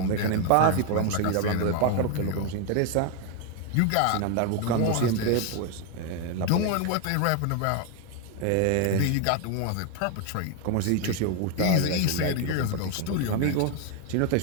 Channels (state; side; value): different; both; correlation 0.01